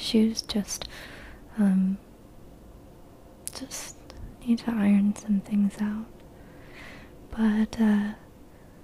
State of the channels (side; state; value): both; identical; correlation 1.00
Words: just need to iron some things out. But in